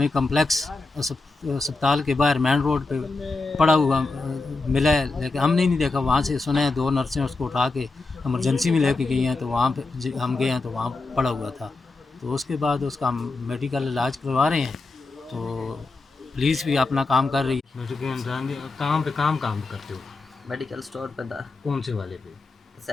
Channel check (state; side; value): quieter; right; 3.6 dB